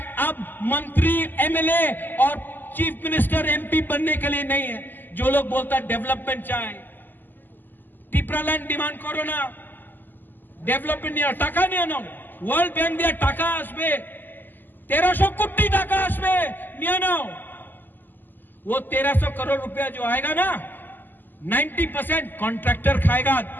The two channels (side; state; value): right; late; 0.090 ms